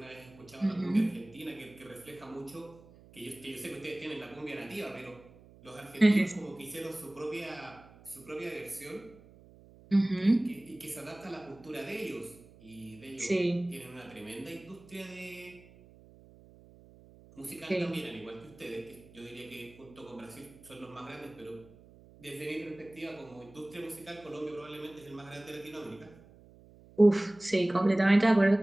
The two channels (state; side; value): noise; right; hum, 23 dB below the sound